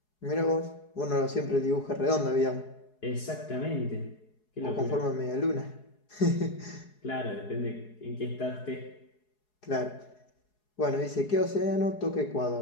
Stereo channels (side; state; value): right; late; 4.7 ms